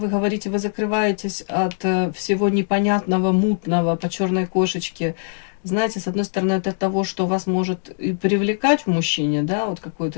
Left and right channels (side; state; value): right; silent; digital silence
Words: говорите, вы закрываетесь от всего непонятного, мутного по черной кошечке. Знаете, с одной стороны, это того, что вас может и привлекать в мужчине, да, вот